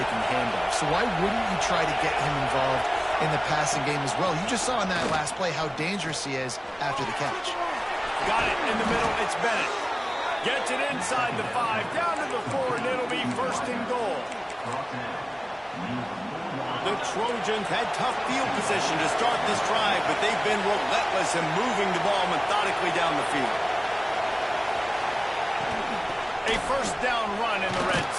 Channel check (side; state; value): both; identical; correlation 1.00